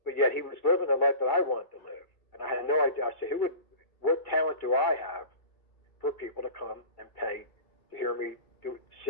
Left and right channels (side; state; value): right; late; 2.3 ms